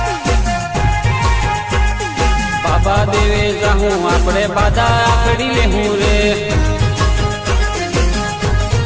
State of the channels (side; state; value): both; identical; correlation 1.00